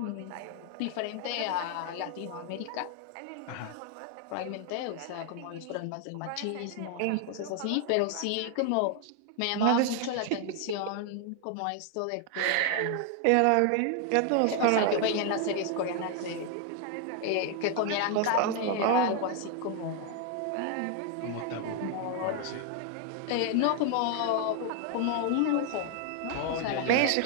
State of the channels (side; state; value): both; different; correlation 0.00